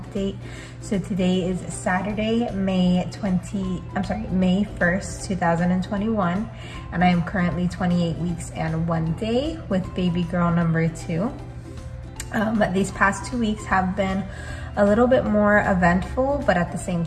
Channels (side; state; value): both; identical; correlation 1.00